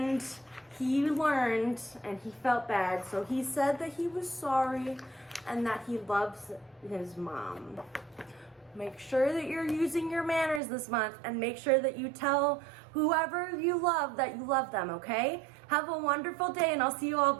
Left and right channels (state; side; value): drops out; left; at 10.6 s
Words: he learned and he felt bad. So he said that he was sorry and that he loves his mom. Make sure that you're using your manners this month and make sure that you tell whoever you love that you love them, okay? Have a wonderful day and I'll see you all